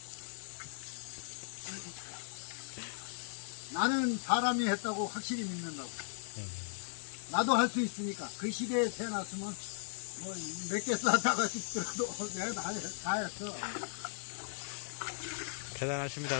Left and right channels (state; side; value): silent; right; digital silence